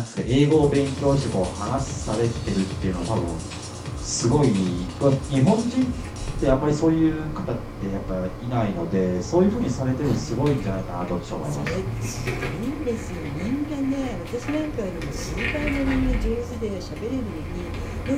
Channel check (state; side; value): identical; both; correlation 1.00